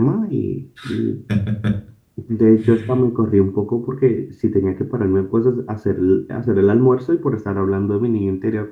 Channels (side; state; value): both; identical; correlation 1.00